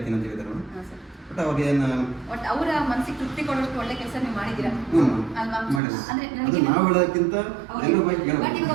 ಅಂತ ಹೇಳಿದ್ದಾರೆ ಮೇಡಮ್. ಹಾಂ ಸರ್. ಬಟ್ ಅವ್ರಿಗೆ ಏನು ಒಟ್ಟು ಅವರ ಮನಸ್ಸಿಗೆ ತೃಪ್ತಿ ಕೊಡೋಷ್ಟು ಒಳ್ಳೆ ಕೆಲಸ ನೀವು ಮಾಡಿದ್ದೀರಾ ಅಲ್ವಾ? ಮಾಡಿಲ್ಲ. ಅಂದ್ರೆ ಅದು ನನಗೆ ನಾವು ಹೇಳೋದಕ್ಕಿಂತ ಎಲ್ಲರ ಬಗ್ಗೆ ಬಟ್ ಹೇಳ್ಬೇಕು.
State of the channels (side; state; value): left; drops out; at 5.8 s